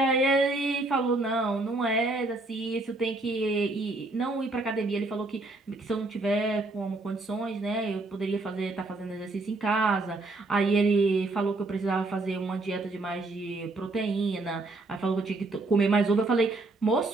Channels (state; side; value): quieter; left; 3.1 dB